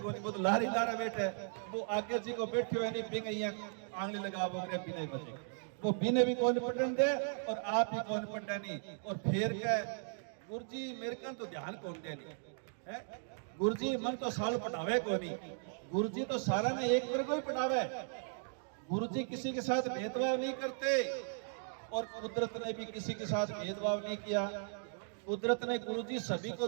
नहीं, वो तो लारी लारा बैठे, वो आगे जी को बैठे हुए नहीं, बिंग आंगली लगा वो बिना बचे, वो बिने भी कौन पढ़ने दे और आप ही कौन पढ़ने नहीं। और फिर क्या गुरु जी मेरे का तो ध्यान कौन दे नहीं है, गुरु जी मन तो साल पढ़ावे को नहीं, गुरु जी तो सारा ने एक वर्ग को ही पढ़ावे। गुरु जी किसी के साथ भेदभाव नहीं करते, और कुदरत ने भी किसी के साथ भेदभाव नहीं किया। कुदरत ने गुरु जी सभी को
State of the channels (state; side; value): silent; left; digital silence